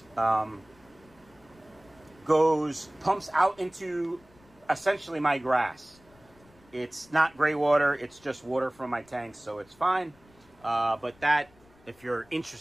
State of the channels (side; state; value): left; noise; rumble, 28 dB below the sound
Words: pumps out into essentially my grass. It's not gray water, it's just water from my tanks, so it's fine. But that, if you're